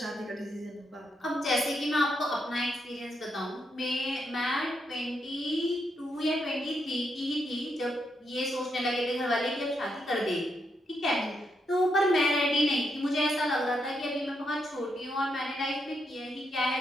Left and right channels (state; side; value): normal; both; correlation 0.80